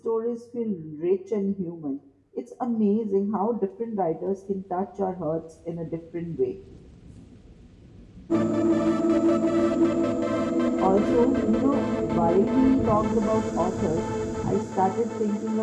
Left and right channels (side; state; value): both; identical; correlation 1.00